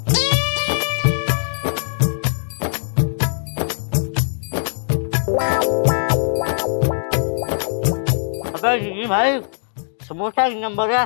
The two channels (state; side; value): silent; right; digital silence